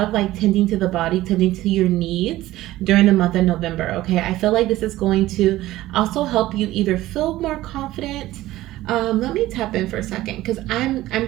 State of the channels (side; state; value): left; quieter; 16.1 dB